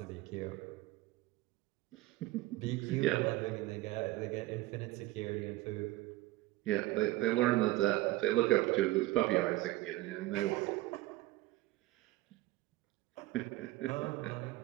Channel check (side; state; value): left; quieter; 17.9 dB